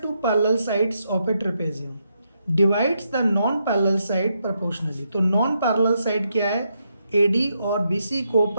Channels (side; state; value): both; inverted; correlation -0.80